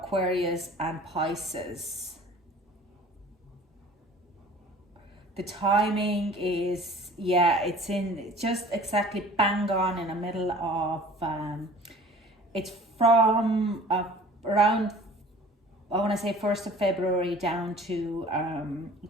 and Pisces. The timing is, yeah, it's in just exactly bang on in the middle of, it's from around, I want to say 1st of February down to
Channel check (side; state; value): both; normal; correlation 0.47